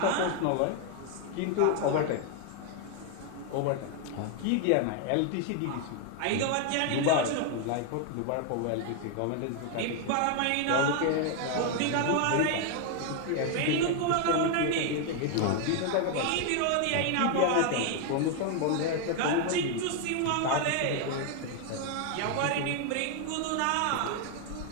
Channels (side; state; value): both; different; correlation 0.00